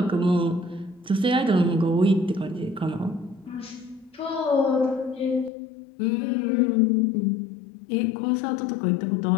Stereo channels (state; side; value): drops out; right; at 5.5 s